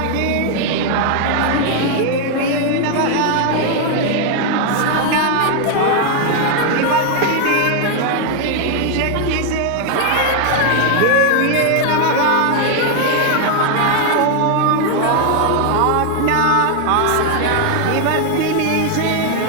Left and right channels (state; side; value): different; both; correlation 0.00